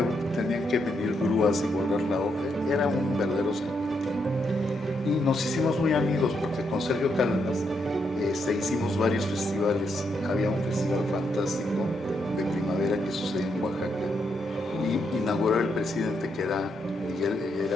que venir grúas y guardar la obra. Era un verdadero serpentín. Y nos hicimos muy amigos porque con Sergio Cárdenas hicimos varios festivales. Había un festival fantástico de primavera que sucedía en Oaxaca, y inauguró el presidente, que era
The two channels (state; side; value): normal; both; correlation 0.79